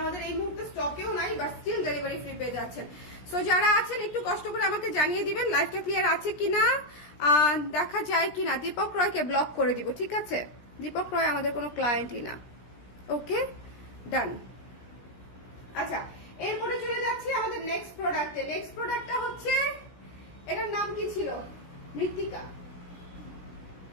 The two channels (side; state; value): right; late; 17 ms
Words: আমাদের এই মুহূর্তে স্টকেও নাই, বাট স্টিল ডেলিভারি ফ্রি পেয়ে যাচ্ছেন। সো যারা আছেন একটু কষ্ট করে আমাকে জানিয়ে দিবেন লাইভটা ক্লিয়ার আছে কিনা, দেখা যায় কিনা। দীপক রয়কে ব্লক করে দিব, ঠিক আছে। দীপক রয় আমাদের কোনো ক্লায়েন্টই না। ওকে, ডান। আচ্ছা, এরপরে চলে যাচ্ছি আমাদের নেক্সট প্রোডাক্টে। নেক্সট প্রোডাক্টটা হচ্ছে, এটার নাম কি ছিল? মৃত্তিকা।